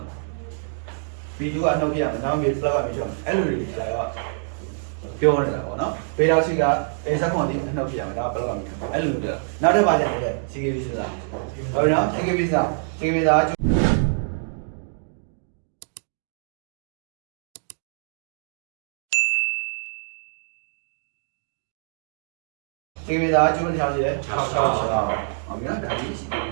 ာ B2ကအနှုတ်ပြရမယ်ဒါမှဘယ်လောက်ကပြီးထွက်မှာအဲ့လိုတွေဆရာကပြောနေတာပေါ့နော်ဘေးတော့ရှိက A16ဒီအနှုတ်ပြရမယ်ဒါမှဘယ်လောက်ကပြီးထွက်မှာအဲ့လိုပြောနောက်တစ်ပါးကျန်တယ် CKB ဆိုတာဟုတ်ပြီနော် CKB ဆိုတာ CKB ဆိုတာဒီကနေ့ဒါကျိုးတစ်ချောင်းရှိတယ်6ဟုတ်ပြီနော်ဒါကြီး CKB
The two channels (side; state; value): left; silent; digital silence